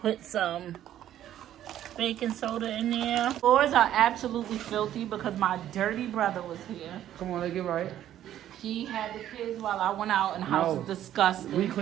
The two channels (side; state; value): left; quieter; 11.8 dB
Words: some baking soda in there. Floors are absolutely filthy because my dirty brother was here. Come on, let's get right. He had the kids while I went out, and the house is disgusting. We